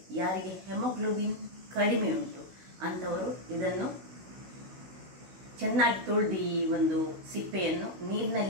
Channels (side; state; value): left; late; 16 ms